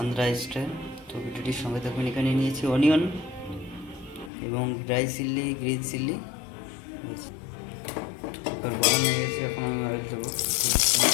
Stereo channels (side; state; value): right; drops out; at 4.3 s